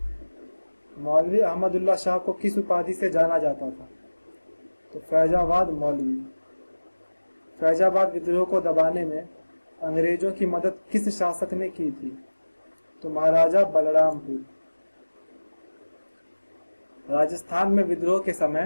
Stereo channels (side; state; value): both; inverted; correlation -1.00